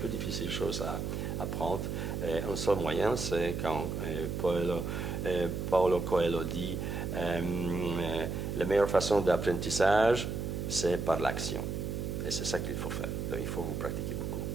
difficile chose à apprendre. Un seul moyen, c'est quand Paulo Coelho dit la meilleure façon d'apprentissage, c'est par l'action. Et c'est ça qu'il faut faire. Donc, il faut vous pratiquer beaucoup.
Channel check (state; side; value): noise; right; hum, 3 dB below the sound